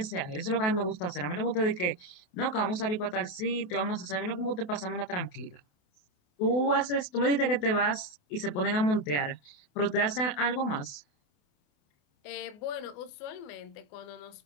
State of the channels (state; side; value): late; right; 28 ms